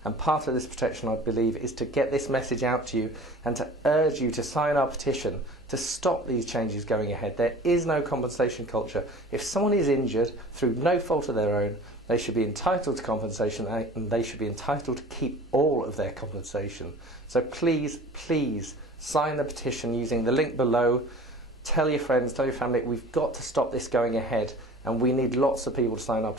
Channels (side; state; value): both; normal; correlation 0.43